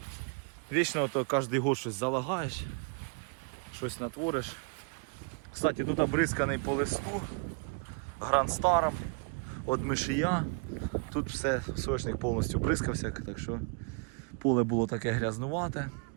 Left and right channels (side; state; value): left; quieter; 37.1 dB